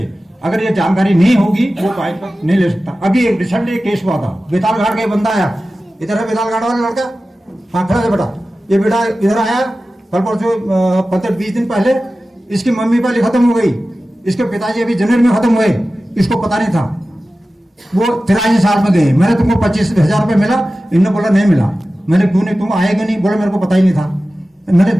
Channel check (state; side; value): normal; both; correlation 0.95